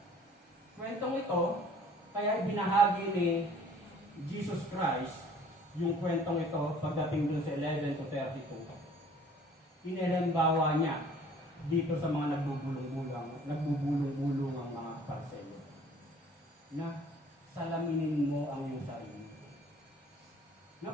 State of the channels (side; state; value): both; normal; correlation 0.53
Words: kwentong ito, kaya ibinahagi ni Jesus Christ yung kwentong ito pagdating dun sa 11 to 32. Inihalimbawa niya dito sa mga nagbubulong-bulong ang mga Pariseyo na salaminin mo ang iyong sarili.